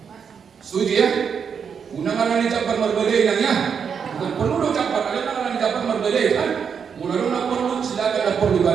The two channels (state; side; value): quieter; left; 6.8 dB